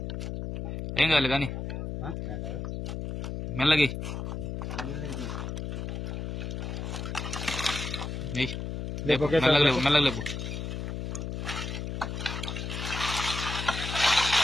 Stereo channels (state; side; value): noise; left; hum, 4 dB below the sound